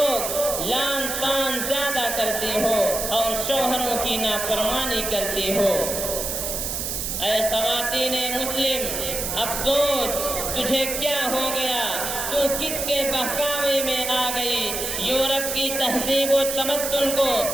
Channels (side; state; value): right; noise; hiss, 3 dB below the sound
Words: لعن طعن زیادہ کرتی ہو اور شوہروں کی نافرمانی کرتی ہو۔ اے خواتین مسلم افسوس تجھے کیا ہو گیا، تو کس کے بہکاوے میں آ گئی؟ یورپ کی تہذیب و تمدن کو